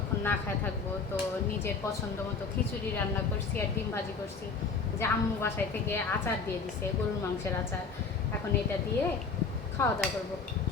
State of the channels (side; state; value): right; quieter; 4.9 dB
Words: না খায় থাকবো, তো নিজের পছন্দ মতো খিচুড়ি রান্না করছি আর ডিম ভাজি করছি, যে আম্মু বাসায় থেকে আচার দিয়ে দিছে, গরুর মাংসের আচার। এখন এটা দিয়ে খাওয়া দাওয়া করবো।